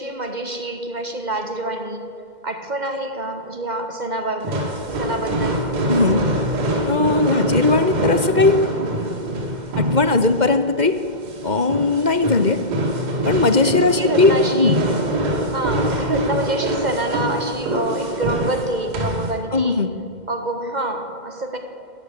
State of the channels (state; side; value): late; left; 2.1 ms